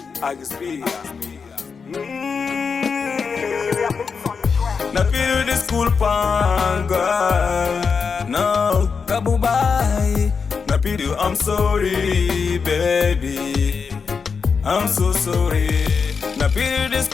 Na feel the school pan girl. No, kabubai. Na feel you, I'm sorry, baby. I'm so sorry. Na feel the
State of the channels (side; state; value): right; quieter; 5.5 dB